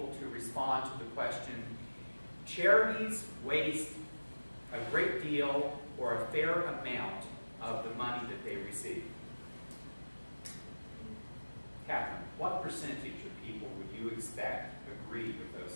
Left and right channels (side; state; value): both; inverted; correlation -1.00